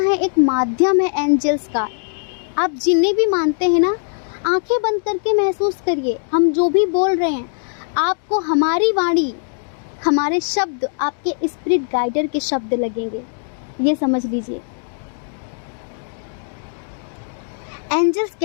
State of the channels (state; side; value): silent; right; digital silence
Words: एक माध्यम है एंजल्स का। आप जिन्हें भी मानते हैं ना, आंखें बंद करके महसूस करिए, हम जो भी बोल रहे हैं आपको हमारी वाणी, हमारे शब्द आपके स्पिरिट गाइडर के शब्द लगेंगे। ये समझ लीजिए। एंजल्स